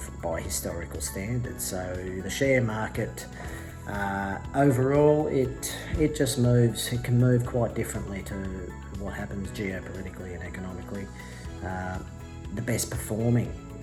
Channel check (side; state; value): both; identical; correlation 1.00